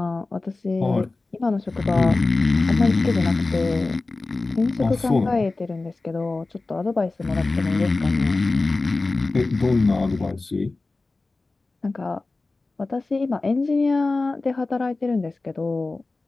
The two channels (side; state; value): right; quieter; 3.4 dB